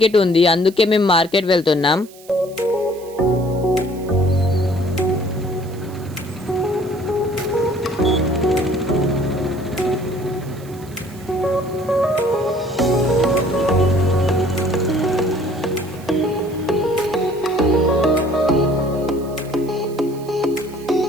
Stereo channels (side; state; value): right; noise; hiss, 23 dB below the sound